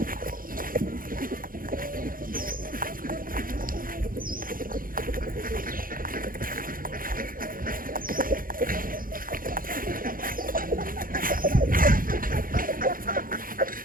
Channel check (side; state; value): left; late; 0.41 ms